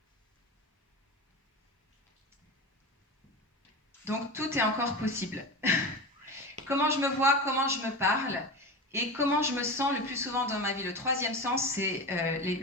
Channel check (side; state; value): both; normal; correlation 0.27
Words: Donc tout est encore possible. Comment je me vois, comment je me parle et comment je me sens le plus souvent dans ma vie. Le troisième sens, c'est